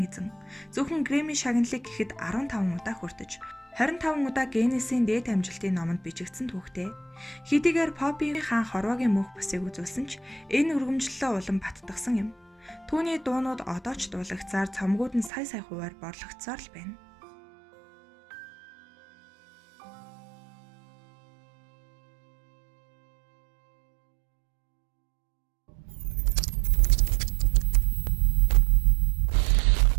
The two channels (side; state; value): left; drops out; at 15.3 s